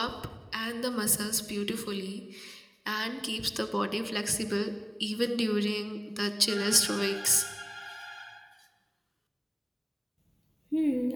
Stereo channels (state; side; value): identical; both; correlation 1.00